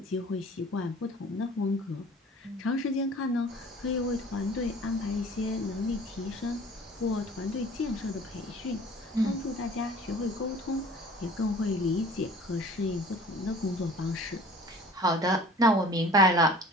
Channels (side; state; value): both; normal; correlation 0.47